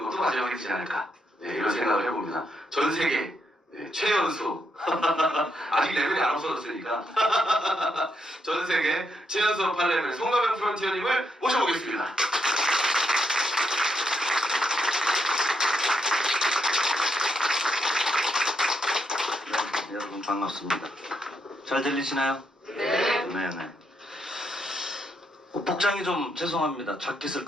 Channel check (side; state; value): both; normal; correlation 0.79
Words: 것도 마지막이 되지 않을까 이런 생각을 해봅니다. 전 세계 최연소 아직 레벨이 안 없어졌으니까 전 세계 최연소 8레벨 송가명 프론티어님을 모셔보겠습니다. 네, 여러분 반갑습니다. 잘 들리시나요? 네. 네네. 복장이 좀 죄송합니다. 자켓을